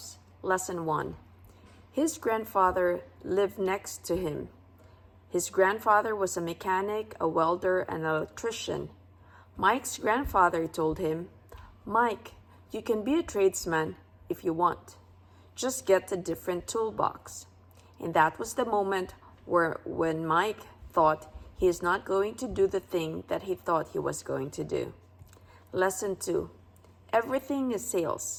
Lesson 1. His grandfather lived next to him. His grandfather was a mechanic, a welder, and an electrician. Mike's grandfather told him, "Mike, you can be a tradesman if you want. Just get a different toolbox." And that was the moment when Mike thought he is not going to do the thing that he thought he was going to do. Lesson 2. Everything is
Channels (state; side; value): identical; both; correlation 1.00